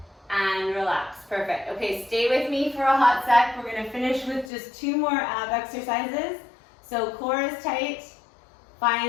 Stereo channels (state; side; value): drops out; right; at 4.5 s